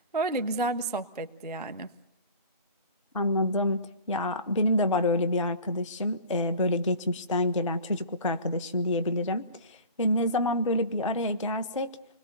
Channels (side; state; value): both; inverted; correlation -0.39